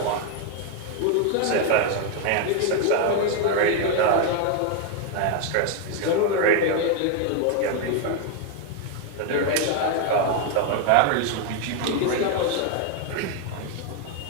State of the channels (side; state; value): both; different; correlation 0.01